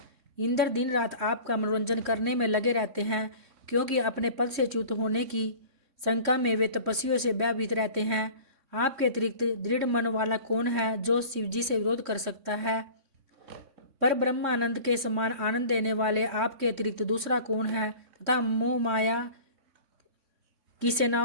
इंद्र दिन रात आपका मनोरंजन करने में लगे रहते हैं, क्योंकि अपने पद से च्युत होने की शंका में वे तपस्वियों से भयभीत रहते हैं। आपके अतिरिक्त दृढ़ मन वाला कौन है, जो शिवजी से विरोध कर सकता है? पर ब्रह्मानंद के समान आनंद देने वाले आपके अतिरिक्त दूसरा कौन है? तथा मोह माया की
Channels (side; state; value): left; late; 3.1 ms